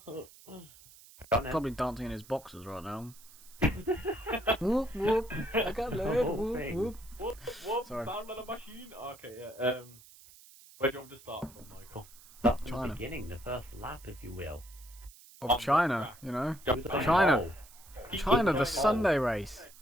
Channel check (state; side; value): noise; right; hiss, 22 dB below the sound